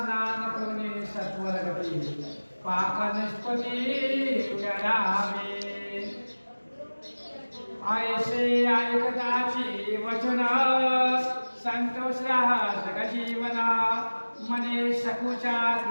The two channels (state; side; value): inverted; both; correlation -1.00